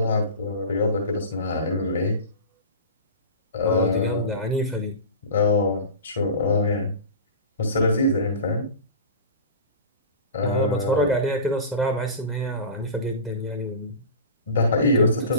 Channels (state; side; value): inverted; both; correlation -0.31